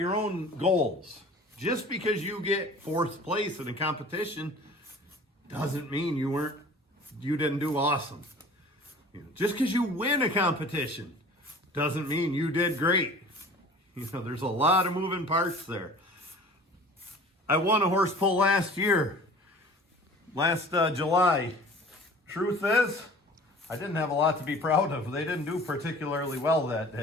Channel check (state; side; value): normal; both; correlation 0.44